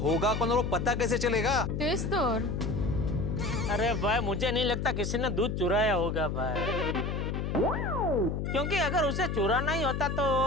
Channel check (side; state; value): left; noise; hum, 2 dB below the sound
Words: कौन और वो पता कैसे चलेगा? तेच तर। अरे भाई मुझे नहीं लगता किसी ने दूध चुराया होगा भाई, क्योंकि अगर उसे चुराना ही होता तो